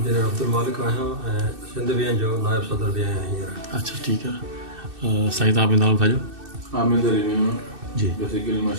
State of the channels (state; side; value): late; left; 2.6 ms